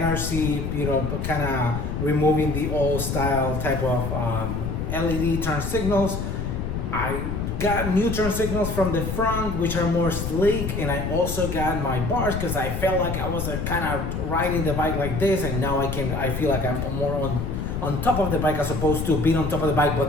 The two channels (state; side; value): noise; left; rumble, 3 dB below the sound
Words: kind of removing the old style type of LED turn signals. I got new turn signals from the front, which are more sleek, and I also got my bars because I felt like I was kind of riding the bike like this, and now I feel like I'm more on top of the bike as opposed to being on top of the bike,